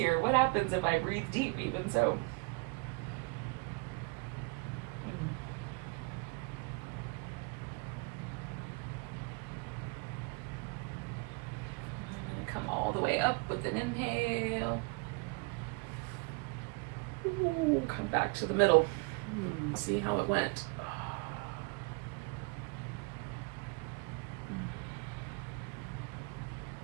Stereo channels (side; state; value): left; quieter; 30.6 dB